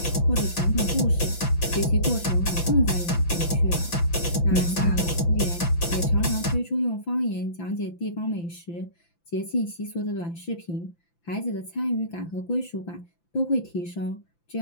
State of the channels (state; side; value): late; right; 5.9 ms